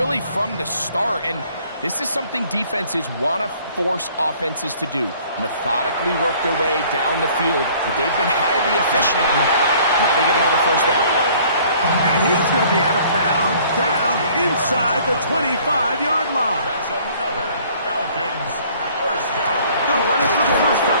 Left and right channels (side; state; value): both; inverted; correlation -0.56